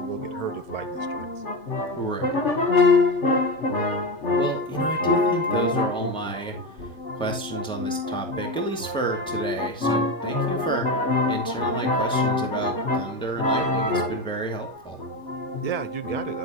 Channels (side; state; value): both; normal; correlation 0.18